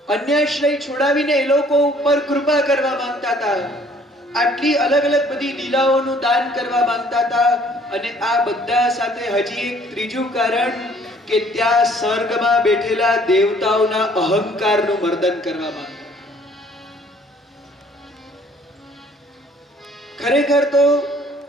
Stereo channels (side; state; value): both; normal; correlation 0.58